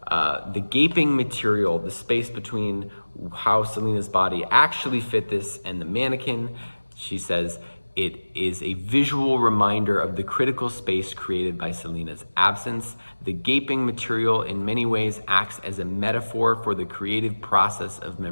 the gaping material, the space between how Selena's body actually fit this and the mannequin, she says, it is a visual reminder of the critical space created by Selena's absence. The gaping material in many ways acts as a metaphor for the creative process of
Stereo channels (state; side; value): inverted; both; correlation -1.00